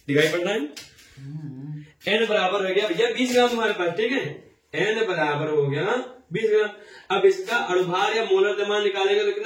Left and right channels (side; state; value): both; identical; correlation 1.00